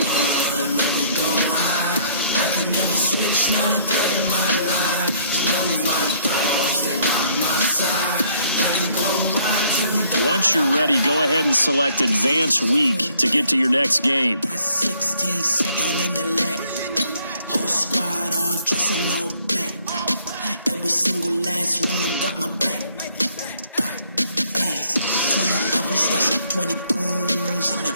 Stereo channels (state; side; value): inverted; both; correlation -0.64